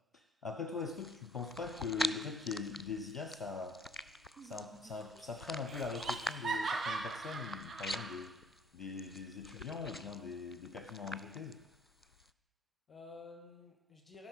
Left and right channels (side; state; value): both; normal; correlation 0.58